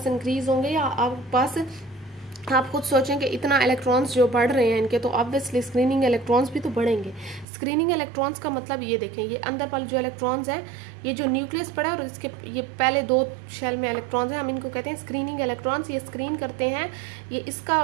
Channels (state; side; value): drops out; left; at 7.5 s